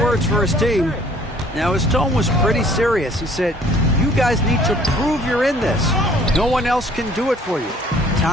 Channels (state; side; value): normal; both; correlation 0.56